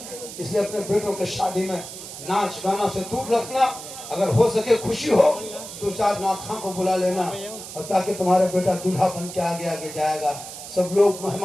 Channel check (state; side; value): noise; right; hiss, 12 dB below the sound